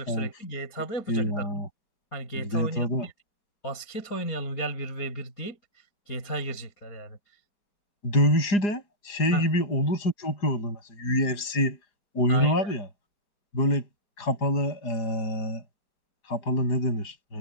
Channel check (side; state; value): right; late; 4.9 ms